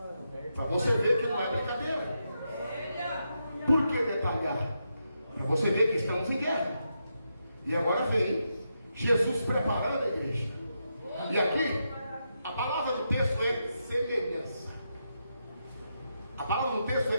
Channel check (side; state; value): both; inverted; correlation -0.84